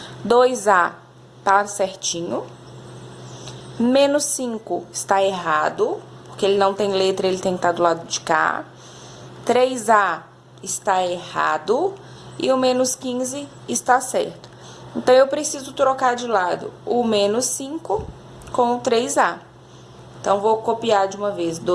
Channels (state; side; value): identical; both; correlation 1.00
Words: 2a está certinho. Menos 5 está errado, porque ele não tem letra, ele tem que estar do lado de cá. 3a está errado e o menos 15 está certo. Então, eu preciso trocar de lado o menos 5 com o 3a. Então, vou copiar de uma vez